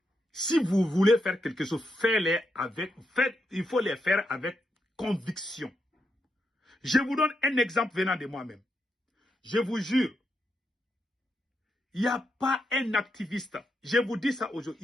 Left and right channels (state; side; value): normal; both; correlation 0.82